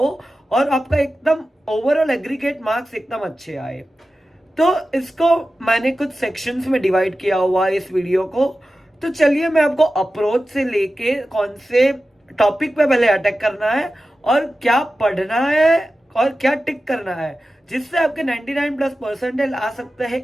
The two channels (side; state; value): both; normal; correlation 0.94